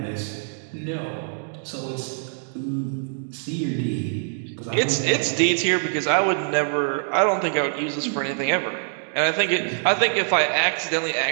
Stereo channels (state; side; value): silent; left; digital silence